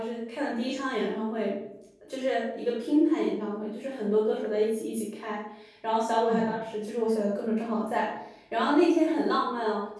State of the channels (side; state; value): both; identical; correlation 1.00